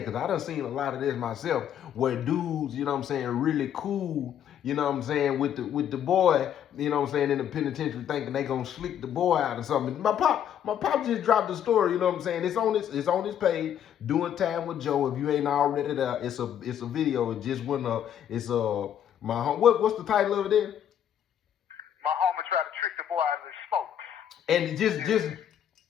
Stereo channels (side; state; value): right; quieter; 9.7 dB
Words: because I done seen a lot of this myself where dudes, you know what I'm saying, really cool, you know what I'm saying, with the boy, you know what I'm saying, in the penitentiary thinking they gonna slick the boy out or something. My pop just dropped the story, you know what I'm saying? It's on his page, Doing Time with Joe. If you ain't already there, it's a video. It just went up. It's my home. What's the title of it there? My homie tried to trick the boy out of his smoke.